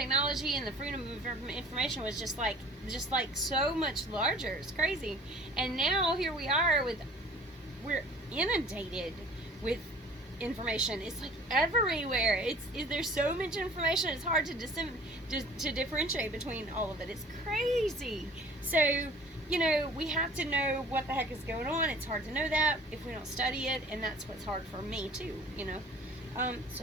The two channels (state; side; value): normal; both; correlation 0.48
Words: and the freedom of information was just like so much larger. It's crazy. And now here we are we're inundated with information. It's like everywhere. There's so much information. It's hard to differentiate between all of it. It's crazy. So, you know, we have to know what the heck is going on. It's hard to know that if we don't study it, and that's what's hard for me too, you know.